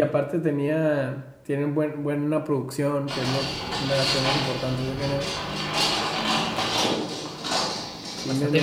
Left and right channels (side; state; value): both; identical; correlation 1.00